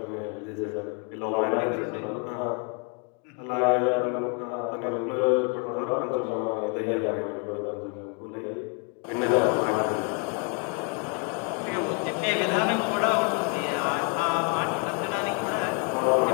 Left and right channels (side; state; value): right; quieter; 37.8 dB